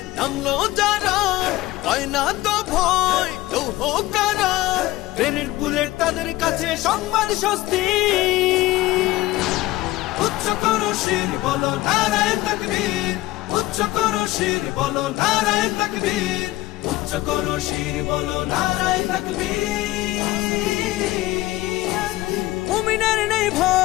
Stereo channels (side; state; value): right; quieter; 17.7 dB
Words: নামলো যারা, হয় না তো ভয় লৌহ কারা। গ্রেনেড বুলেট তাদের কাছে সংবাদ স্বস্তি। উচ্চ করো শির বলো নারায়ে তাকবীর, উচ্চ করো শির বলো নারায়ে তাকবীর, উচ্চ করো শির বলো নারায়ে তাকবীর। মুমিনের নেই